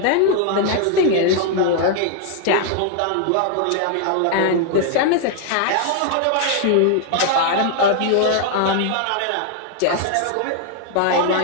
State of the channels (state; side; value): different; both; correlation 0.00